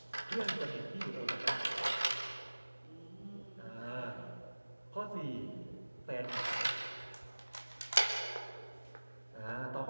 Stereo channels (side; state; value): both; inverted; correlation -1.00